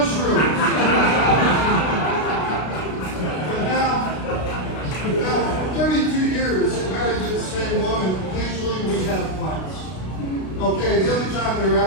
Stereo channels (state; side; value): late; right; 33 ms